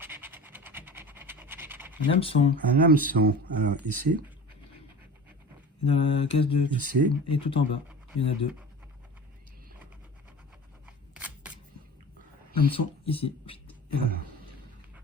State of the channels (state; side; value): normal; both; correlation 0.36